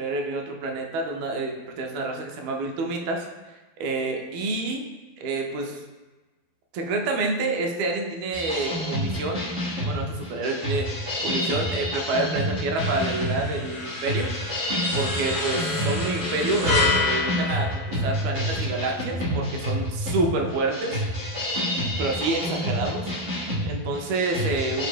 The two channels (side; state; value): left; late; 12 ms